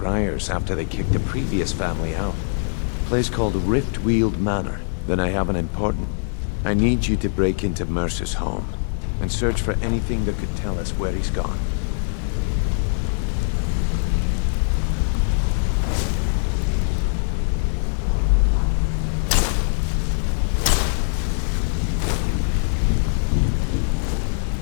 after they kicked the previous family out. A place called Riftweald Manor. Then I have an important... I need you to break into Mercer's home and search for anything that could tell us where he's gone.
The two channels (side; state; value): right; silent; digital silence